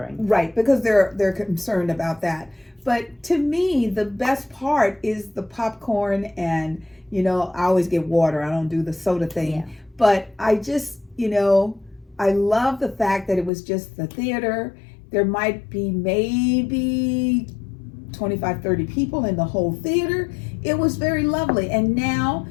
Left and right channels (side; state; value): right; drops out; at 13.5 s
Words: Right, because they're concerned about that. But to me, the best part is the popcorn and, I always get water. I don't do the soda thing. Yeah. But I just, I love the fact that it was just the theater. There might be maybe 25, 30 people in the whole theater. It was very lovely. And now,